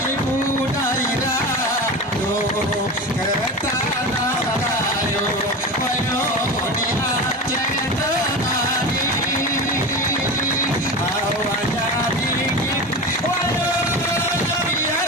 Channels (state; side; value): normal; both; correlation 0.27